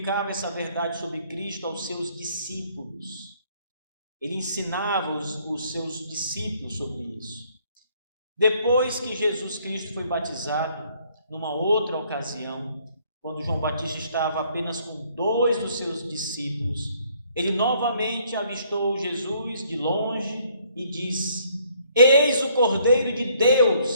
essa verdade sobre Cristo aos seus discípulos. Ele ensinava os seus discípulos sobre isso. Depois que Jesus Cristo foi batizado, numa outra ocasião, quando João Batista estava apenas com 2 dos seus discípulos, ele novamente avistou Jesus de longe e disse: eis o Cordeiro de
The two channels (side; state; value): both; inverted; correlation -0.64